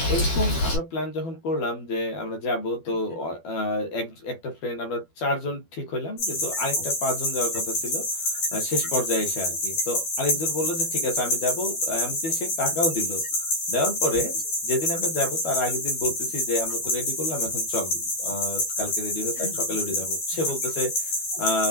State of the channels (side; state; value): right; late; 12 ms